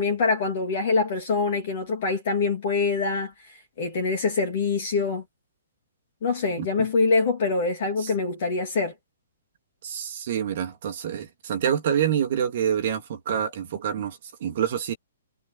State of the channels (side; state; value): both; inverted; correlation -0.46